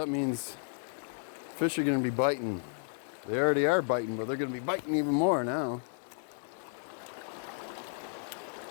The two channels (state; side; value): silent; right; 56 dB below the other